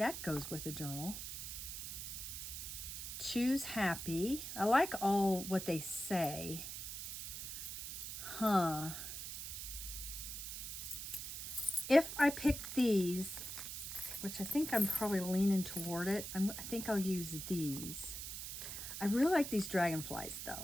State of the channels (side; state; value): right; noise; hiss, 6 dB below the sound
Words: goes with the journal. Choose happy. I like all what they say. If I pick these, which I think I'm probably leaning toward it, I think I'll use these. I really like these dragonflies